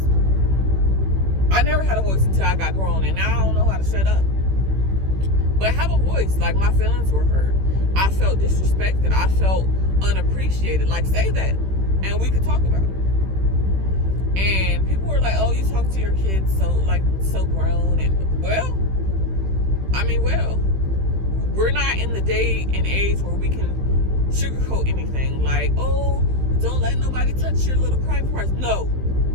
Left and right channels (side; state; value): left; late; 16 ms